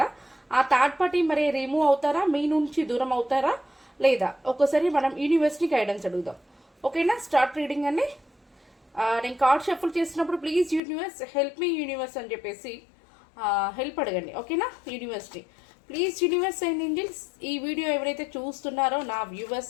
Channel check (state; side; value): drops out; right; at 10.8 s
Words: ఆ థర్డ్ పార్టీ మరి రిమూవ్ అవుతారా, మీ నుంచి దూరం అవుతారా లేదా? ఒకసారి మనం యూనివర్స్ని గైడెన్స్ అడుగుదాం. ఓకేనా? స్టార్ట్ రీడింగ్ అండి. నేను కార్డ్ షఫుల్ చేసినప్పుడు please universe help me universe అని చెప్పేసి హెల్ప్ అడగండి. ఓకేనా? యూనివర్స్ని ప్లీజ్ యూనివర్స్ అండ్ ఏంజల్స్, ఈ వీడియో ఎవరైతే చూస్తున్నారో నా